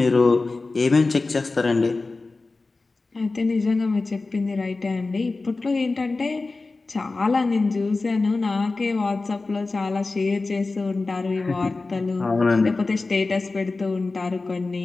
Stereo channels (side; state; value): right; quieter; 3.6 dB